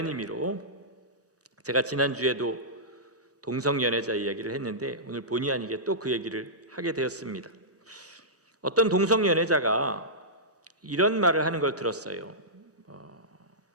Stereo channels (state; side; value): normal; both; correlation -0.14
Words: 의미로, 제가 지난주에도 동성연애자 이야기를 했는데 오늘 본의 아니게 또 그 얘기를 하게 되었습니다. 어떤 동성연애자가 이런 말을 하는 걸 들었어요.